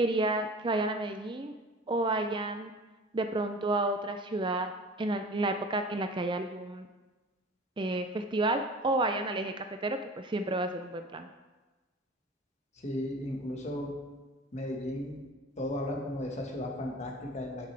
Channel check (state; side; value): normal; both; correlation 0.40